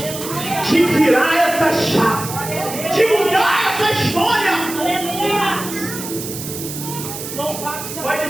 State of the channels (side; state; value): right; noise; hiss, 9 dB below the sound